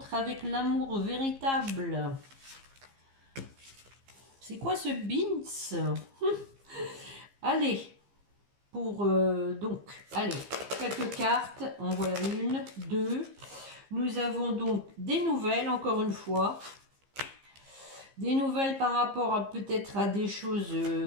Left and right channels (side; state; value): left; late; 15 ms